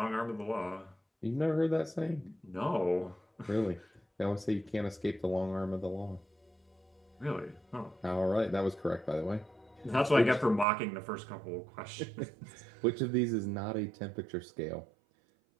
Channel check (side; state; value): left; drops out; at 10.7 s